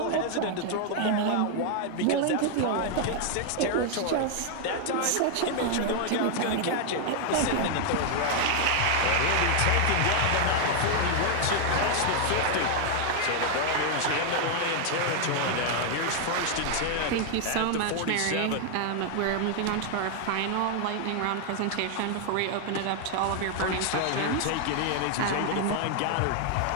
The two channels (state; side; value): different; both; correlation 0.00